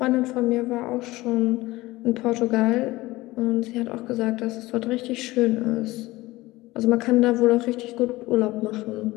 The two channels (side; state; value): right; quieter; 19.2 dB